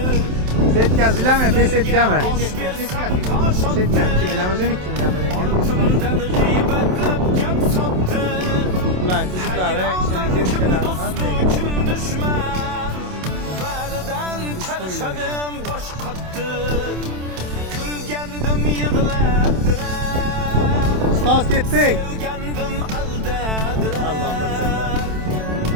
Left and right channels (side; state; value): left; late; 27 ms